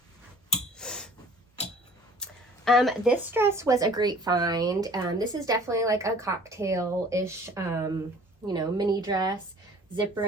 This dress was a great find. This is definitely like a cocktail-ish, you know, mini dress. Zipper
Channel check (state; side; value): normal; both; correlation 0.50